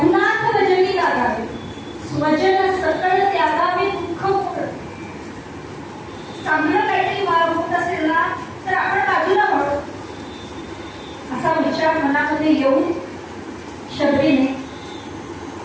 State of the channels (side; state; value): both; identical; correlation 1.00